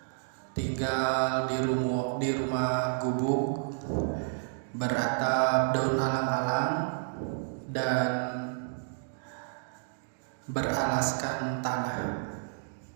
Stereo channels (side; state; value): left; silent; digital silence